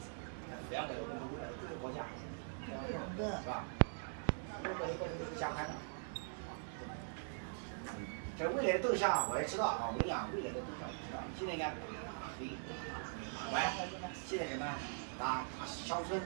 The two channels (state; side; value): silent; left; digital silence